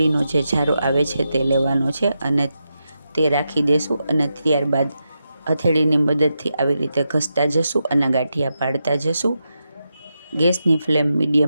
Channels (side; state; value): both; inverted; correlation -0.87